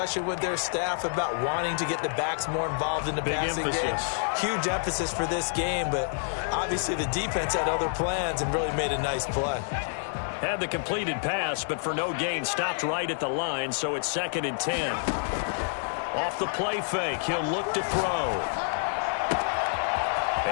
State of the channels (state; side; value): silent; right; digital silence